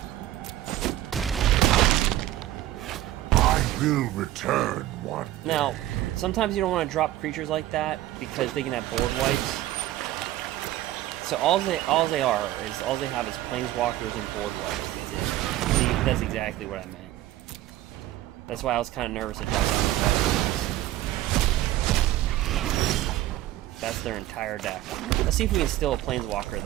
I will return one. Now, sometimes you don't want to drop creatures like that because they can have board wipes. So all they have is planeswalkers and board wipes. That's it. See, that's exactly what I meant. That's why I was kind of nervous to drop down the cards. That's their entire deck. Let's see if we can steal a planeswalker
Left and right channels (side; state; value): left; quieter; 14.6 dB